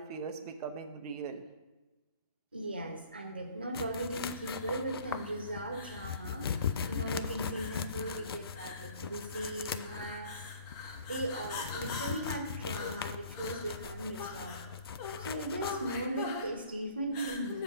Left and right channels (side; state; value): both; inverted; correlation -0.51